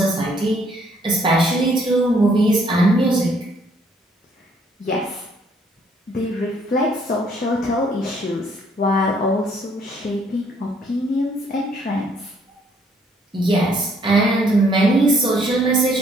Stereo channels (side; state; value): both; normal; correlation 0.65